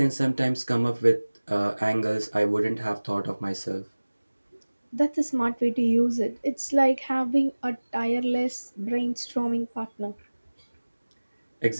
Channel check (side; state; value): both; inverted; correlation -1.00